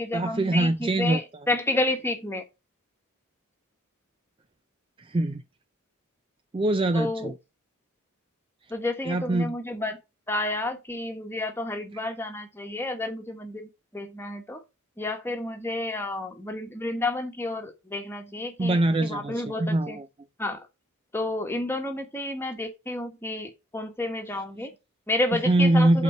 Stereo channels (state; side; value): normal; both; correlation 0.70